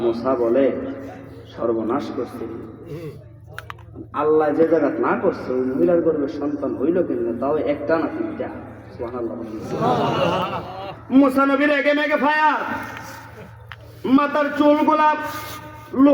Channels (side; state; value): both; identical; correlation 1.00